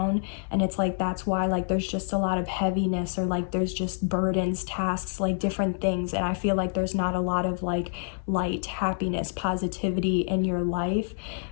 And it's like, that's why like there's just a lot of heaviness, or like there's just burdens, tasks, like different things. And I feel like there's not a lot of like light, happiness, positivity in your life.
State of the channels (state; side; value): silent; right; 60 dB below the other